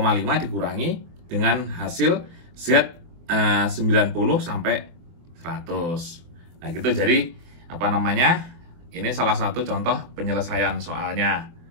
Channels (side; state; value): left; late; 24 ms